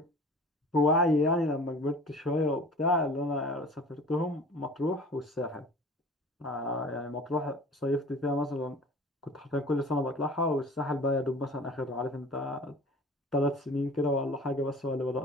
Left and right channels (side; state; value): both; normal; correlation 0.43